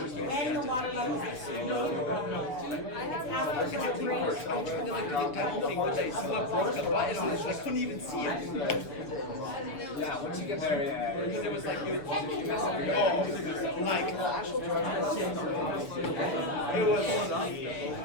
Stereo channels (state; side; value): late; right; 6.9 ms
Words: the water level is exceeding? It's asked for the rate. Someone broke the button on it, I couldn't even see it. Yeah, once you get there, yeah. Because it was like, you mess up your like, it